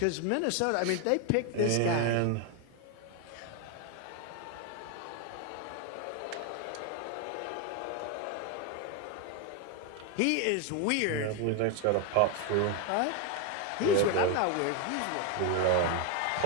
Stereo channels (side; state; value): both; different; correlation 0.01